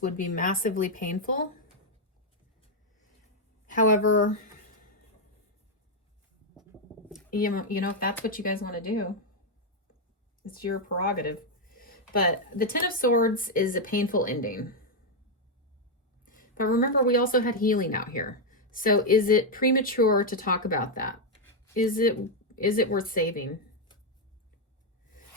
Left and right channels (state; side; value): normal; both; correlation 0.00